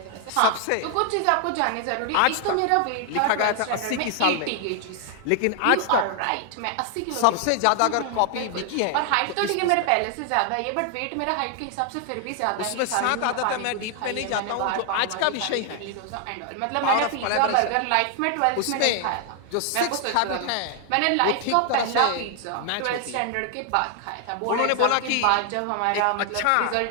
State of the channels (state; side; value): different; both; correlation 0.00